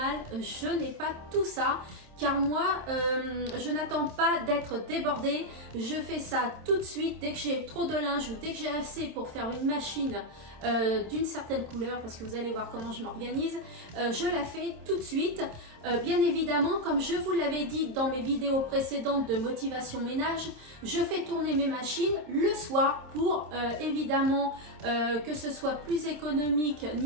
je n'ai pas tout ça. Car moi, je n'attends pas d'être débordée. Je fais ça tout de suite dès que j'ai trop de linge ou dès que j'ai assez pour faire une machine d'une certaine couleur, parce que vous allez voir comment je m'organise. Je la fais tout de suite. Bien évidemment, comme je vous l'avais dit dans mes vidéos précédentes de motivation ménage, je fais tourner mes machines le soir pour évidemment que ce soit plus économique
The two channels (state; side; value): late; left; 27 ms